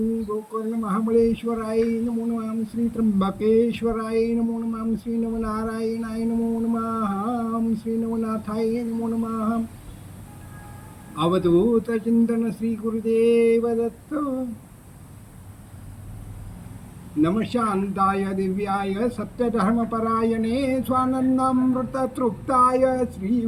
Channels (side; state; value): both; identical; correlation 1.00